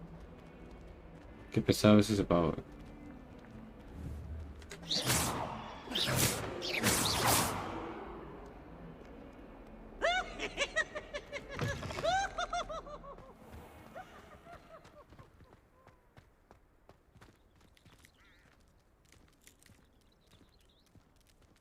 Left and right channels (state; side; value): identical; both; correlation 1.00